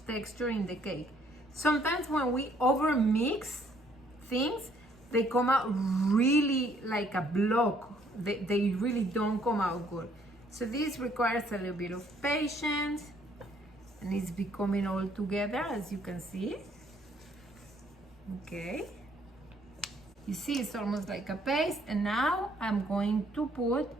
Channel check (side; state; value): both; normal; correlation 0.65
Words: texture in the cake. Sometimes when we overmix things, they come out really like a block. They really don't come out good. So this requires a little bit of patience, and it's becoming all together, as you can see. Okay. You see, it's almost like a paste. And now I'm going to put